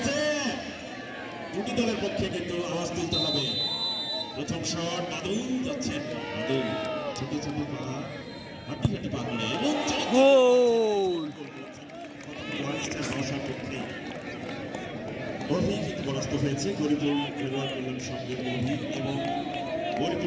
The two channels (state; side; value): identical; both; correlation 1.00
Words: দুটি দলের পক্ষে কিন্তু আওয়াজ তুলতে হবে। প্রথম শট বাদল যাচ্ছেন, বাদল ছোট ছোট পা হাঁটি হাঁটি পা করে এবং গোল। অভিজিৎ পরাস্ত হয়েছে গরিপুর খেলোয়াড় কল্যাণ সঙ্গের অভিজিৎ এবং